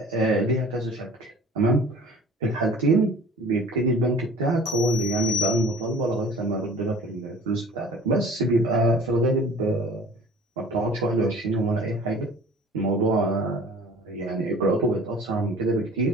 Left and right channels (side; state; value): both; normal; correlation 0.47